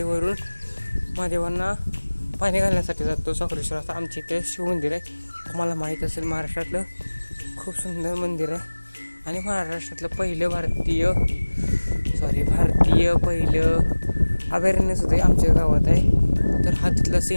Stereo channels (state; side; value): inverted; both; correlation -1.00